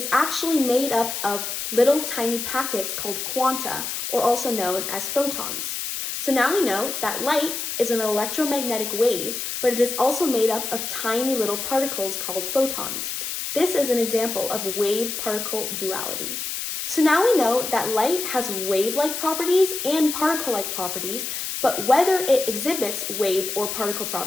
actually made up of little tiny packets called quanta, or also known as photons? So now we know that light is an electromagnetic wave, but it is also made up of tiny little particles called photons. This is an example of wave-particle duality. So now we know that light has wave-like properties and particle-like properties, but whether it exhibits wave or particle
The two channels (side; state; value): left; noise; hiss, 4 dB below the sound